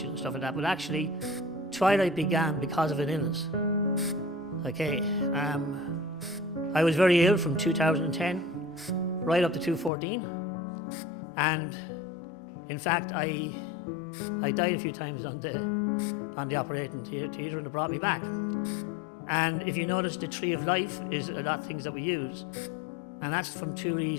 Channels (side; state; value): right; drops out; at 9.9 s